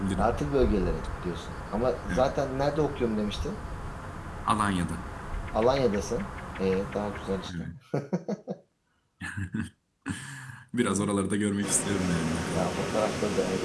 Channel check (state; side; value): identical; both; correlation 1.00